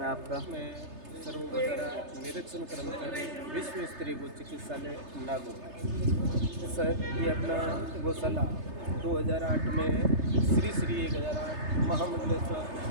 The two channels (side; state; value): left; late; 3.3 ms